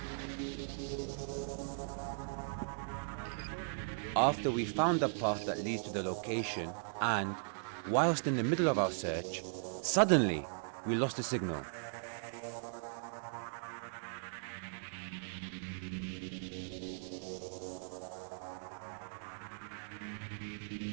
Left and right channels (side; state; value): left; silent; digital silence